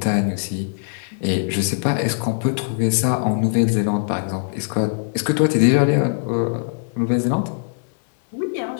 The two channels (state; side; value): silent; right; digital silence